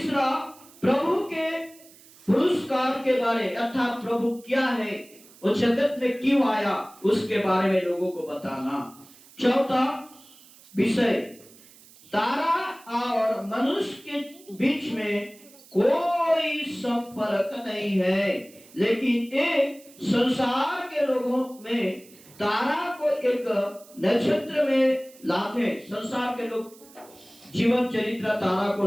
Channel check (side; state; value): right; noise; hiss, 24 dB below the sound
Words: प्रभु के पुरस्कार के बारे, अर्थात प्रभु क्या है, वो जगत में क्यों आया, उसके बारे में लोगों को बताना। चौथा विषय, तारा और मनुष्य के बीच में कोई संपर्क नहीं है, लेकिन एक संसार के लोगों में तारा को एक नक्षत्र में लाते, संसार के लोग जीवन चरित्र तारा को